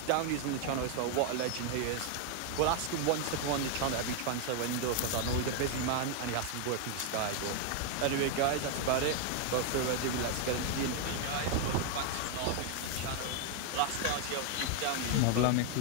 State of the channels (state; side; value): different; both; correlation 0.00